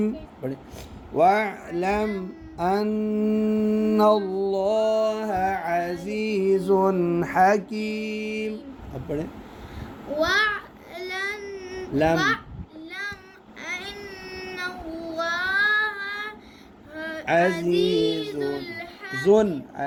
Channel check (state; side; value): identical; both; correlation 1.00